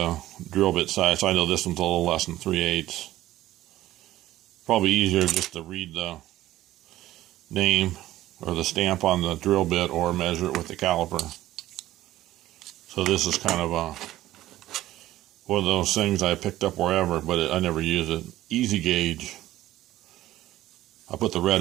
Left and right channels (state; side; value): quieter; left; 14.9 dB